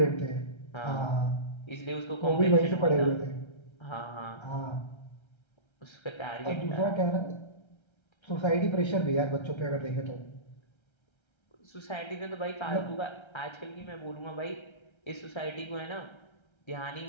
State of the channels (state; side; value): late; right; 1.3 ms